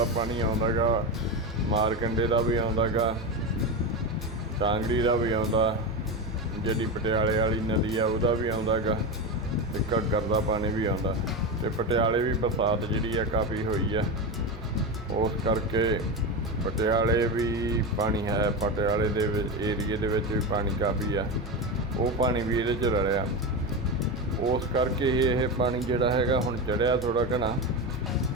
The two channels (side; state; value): both; normal; correlation 0.18